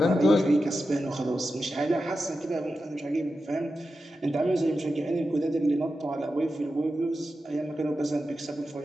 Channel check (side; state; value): both; normal; correlation 0.91